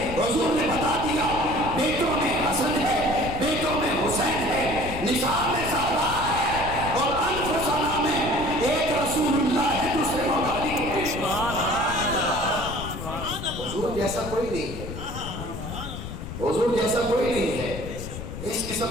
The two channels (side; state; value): left; noise; rumble, 8 dB below the sound